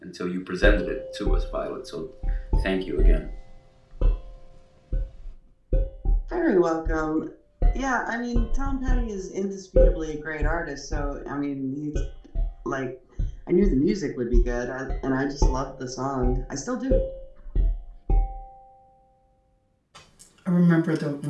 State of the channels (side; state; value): both; identical; correlation 1.00